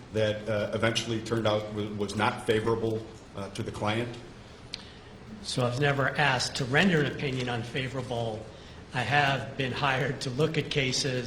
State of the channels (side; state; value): both; identical; correlation 1.00